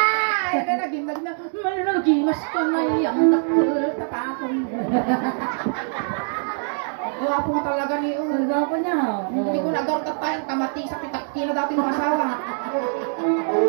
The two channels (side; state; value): left; silent; 63 dB below the other